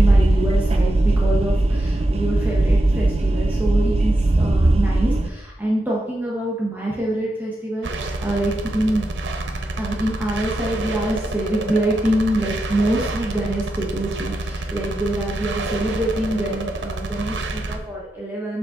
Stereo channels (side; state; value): both; normal; correlation 0.88